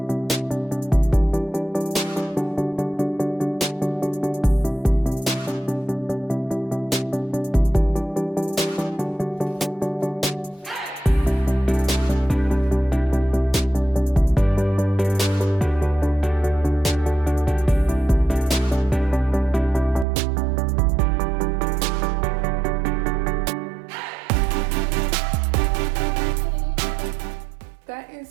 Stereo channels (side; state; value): left; drops out; at 20.1 s